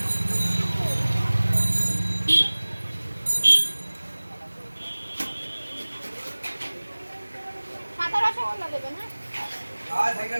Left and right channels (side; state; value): both; inverted; correlation -1.00